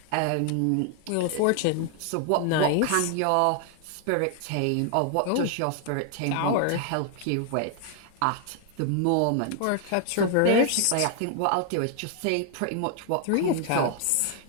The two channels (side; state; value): both; different; correlation 0.00